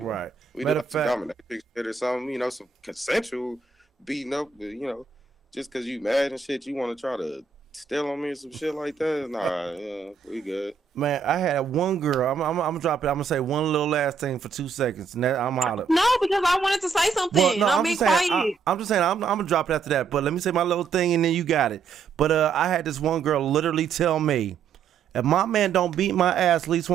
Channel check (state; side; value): quieter; left; 5.8 dB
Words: Right. We do have to dominate shit or something, you know, some consensual beating up, but, you know, just because you mad and shit, you want to try to steal on me or some shit like that. Nah, we good. Man, I had one girl. I'm gonna drop it. I'm gonna say one little last thing for 2 seconds, and then I'm out of. No, because I wanted to say something. Well, no, I'm being quiet. I'm just saying I'm gonna drop it after that. But let me say my little thing, and then you got it. But I had this one girl literally tell me, if my man don't beat my ass at least